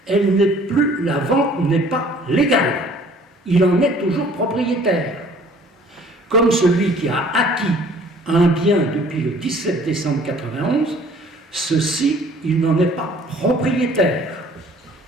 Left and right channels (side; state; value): both; normal; correlation 0.54